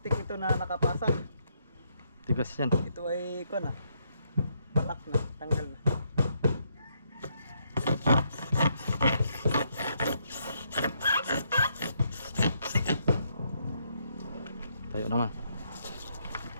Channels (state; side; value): inverted; both; correlation -0.75